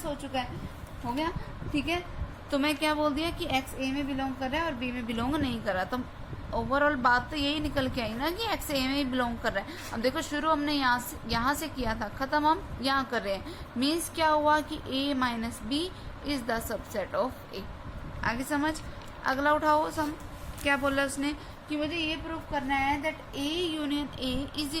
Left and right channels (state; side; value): identical; both; correlation 1.00